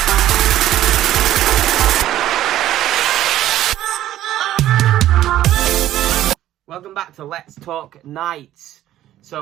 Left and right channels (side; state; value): left; quieter; 13.2 dB